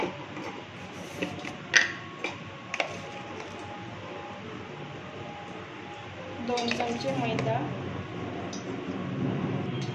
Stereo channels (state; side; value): identical; both; correlation 1.00